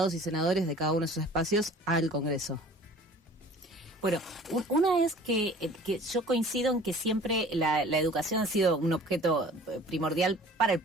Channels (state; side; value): normal; both; correlation 0.47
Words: y senadores de cada uno de esos espacios al Congreso. Bueno, una es que yo coincido en que siempre la educación ha sido un objeto primordial para el